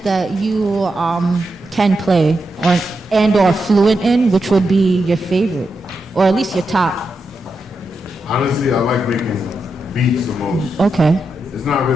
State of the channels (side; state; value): both; normal; correlation 0.86